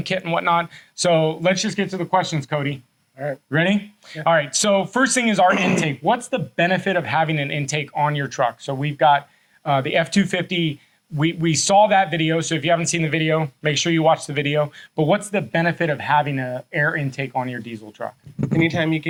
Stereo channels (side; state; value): both; identical; correlation 1.00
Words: kit and whatnot. So let's just get to the questions, Cody. All right. Ready? Yeah. All right. So first thing is our intake. What's the benefit of having an intake on your truck? So we've got the F250. We saw that video, so if you haven't seen the video, make sure you watch the video. But what's the benefit of having an air intake on your diesel truck? Anytime you